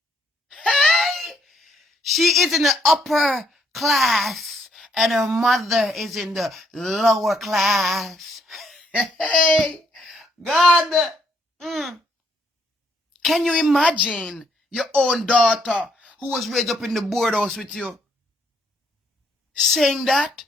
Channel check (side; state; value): both; normal; correlation 0.71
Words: Hey! She is in the upper class and her mother is in the lower class. Hey! God! Can you imagine your own daughter who was raised up in the board house with you saying that?